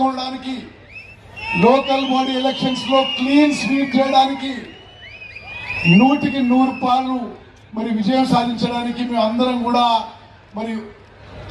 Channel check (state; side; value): identical; both; correlation 1.00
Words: కొనడానికి, లోకల్ బాడీ ఎలక్షన్స్ లో క్లీన్ స్వీప్ చేయడానికి, 100% మరి విజయం సాధించడానికి మేము అందరం కూడా మరి